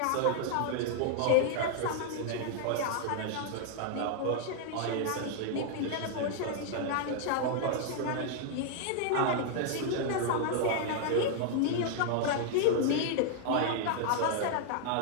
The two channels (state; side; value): different; both; correlation -0.01